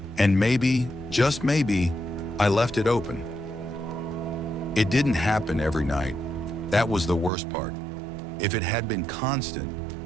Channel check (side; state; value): left; drops out; at 7.3 s